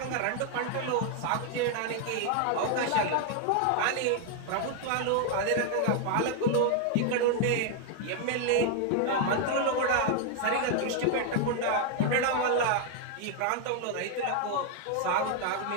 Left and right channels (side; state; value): both; different; correlation 0.00